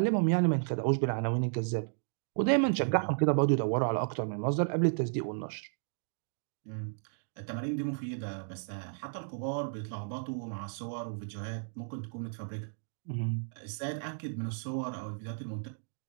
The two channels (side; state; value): left; silent; digital silence